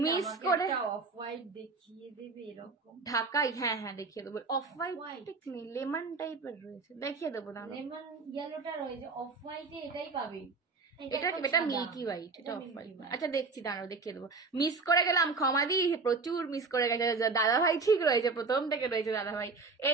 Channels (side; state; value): left; quieter; 4.2 dB